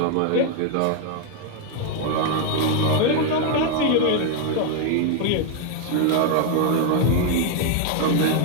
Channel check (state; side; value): different; both; correlation 0.00